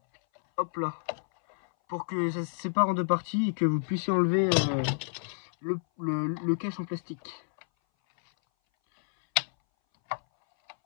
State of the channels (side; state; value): right; silent; 58 dB below the other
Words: Hop là. Pour que ça se sépare en deux parties et que vous puissiez enlever le cache en plastique.